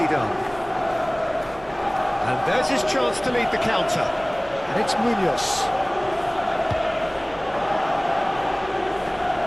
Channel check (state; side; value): noise; right; rumble, 22 dB below the sound